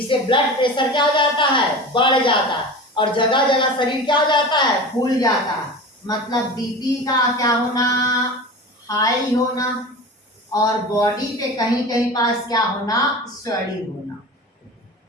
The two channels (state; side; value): normal; both; correlation 0.33